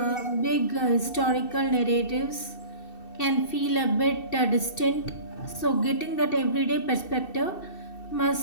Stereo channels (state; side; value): late; right; 2.7 ms